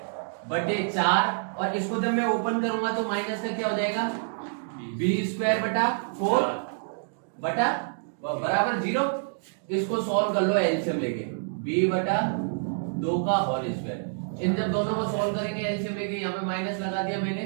बटे 4, और इसको जब मैं ओपन करूंगा तो माइनस का क्या हो जाएगा बी स्क्वायर बटा 4 बटा बराबर 0। इसको सॉल्व कर लो एलसीएम लेके, बी बटा 2 का होल स्क्वायर, इन जब दोनों को सॉल्व करेंगे एलसीएम लेके, यहाँ पे माइनस लगा दिया मैंने,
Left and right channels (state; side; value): silent; left; digital silence